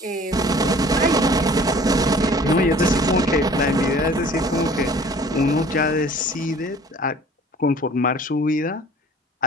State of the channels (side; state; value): both; normal; correlation 0.50